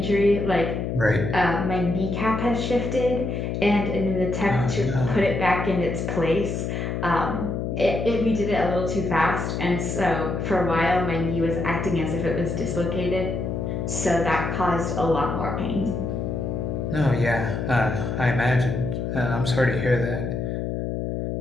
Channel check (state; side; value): noise; left; hum, 2 dB below the sound